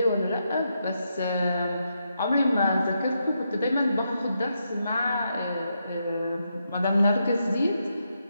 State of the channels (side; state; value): both; inverted; correlation -0.82